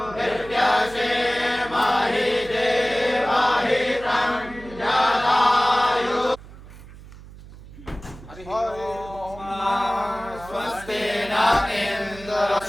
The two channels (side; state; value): right; noise; hum, 18 dB below the sound